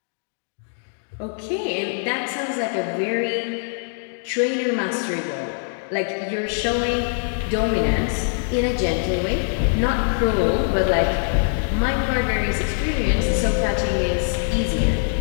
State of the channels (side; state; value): right; silent; 64 dB below the other